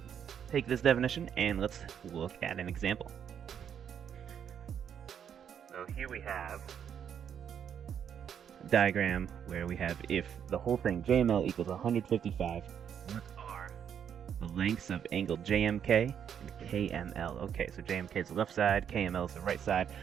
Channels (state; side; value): quieter; left; 8.4 dB